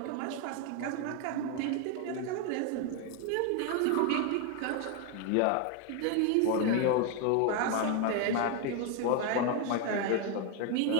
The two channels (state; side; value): different; both; correlation 0.01